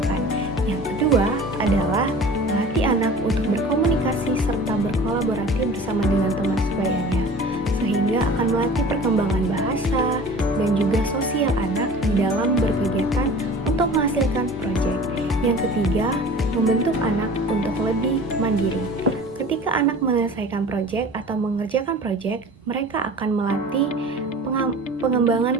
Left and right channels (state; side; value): normal; both; correlation 0.42